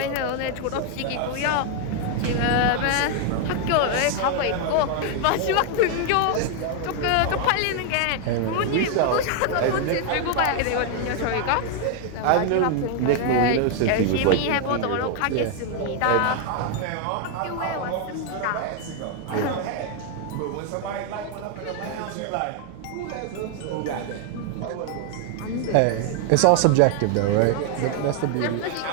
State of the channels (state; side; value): different; both; correlation 0.00